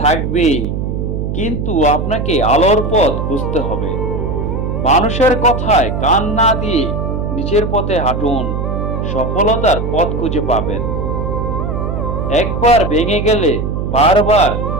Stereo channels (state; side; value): noise; right; hum, 2 dB below the sound